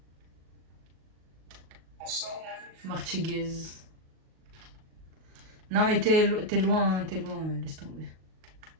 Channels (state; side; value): late; left; 38 ms